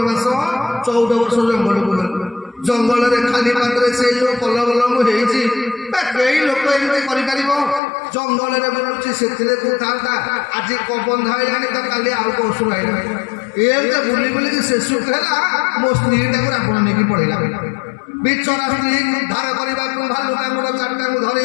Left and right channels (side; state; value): right; drops out; at 7.8 s